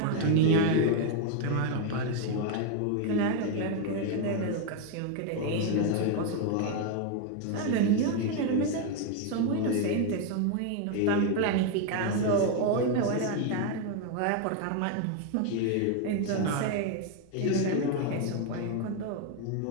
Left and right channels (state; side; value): different; both; correlation 0.01